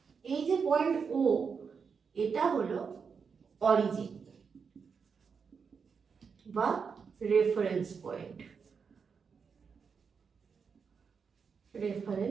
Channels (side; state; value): left; quieter; 5.9 dB